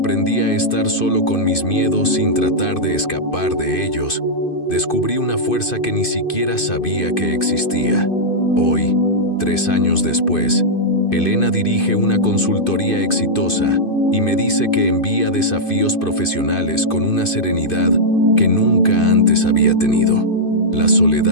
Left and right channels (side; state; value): right; late; 2.5 ms